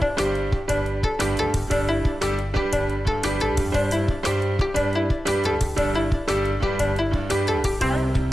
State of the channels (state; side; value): normal; both; correlation 0.93